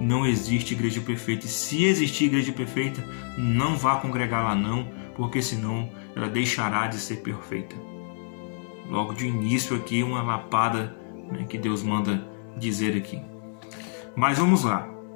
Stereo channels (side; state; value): right; silent; 60 dB below the other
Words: existe igreja perfeita. E se existir igreja perfeita, não vá congregar lá não, porque senão ela deixará de ser perfeita. Logo de início aqui, uma lapada, né, que Deus manda dizer aqui. Mas vamos lá.